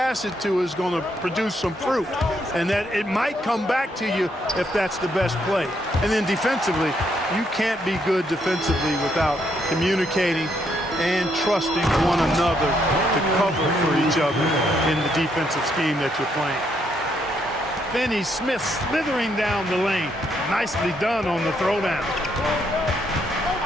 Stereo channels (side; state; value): both; normal; correlation 0.74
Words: it to is going to produce some fruit, and that it might come back to you if that's the best play. And then defensively, you can't be good defensively without communicating and trusting one another to cover for each other in the defensive scheme that you're playing. Finney Smith slithering down the lane. Nicely done on the throwdown.